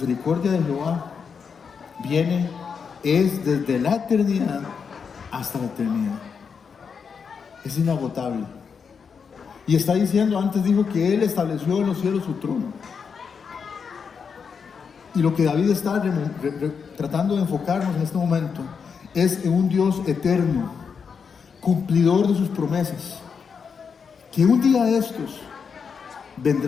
de Jehová es desde la eternidad hasta la eternidad. Es inagotable. Y está diciendo, antes dijo que Él estableció en los cielos su trono. Y lo que David está tratando de enfocarnos en este momento es en un Dios eterno, cumplidor de sus promesas, que un día de estos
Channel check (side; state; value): right; quieter; 6.1 dB